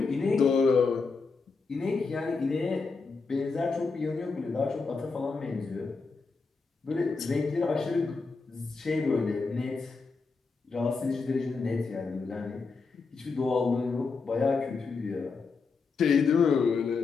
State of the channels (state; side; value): quieter; right; 4.5 dB